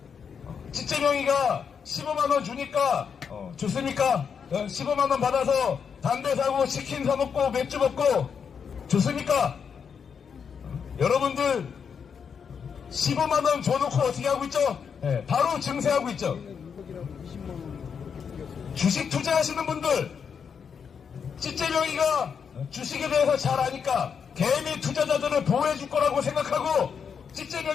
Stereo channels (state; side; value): quieter; right; 6.7 dB